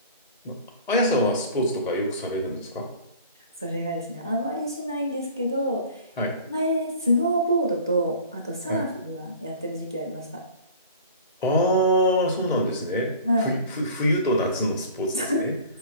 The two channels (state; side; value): inverted; both; correlation -0.43